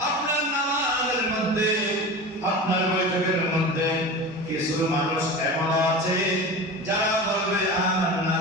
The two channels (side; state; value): both; normal; correlation 0.30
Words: আপনার নামাজের মধ্যে, আপনার বৈঠকের মধ্যে কিছু মানুষ এমন আছে যারা বলবে আমান্না